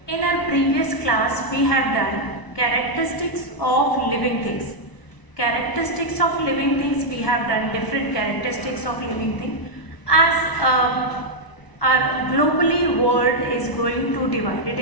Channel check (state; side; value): late; right; 1.0 ms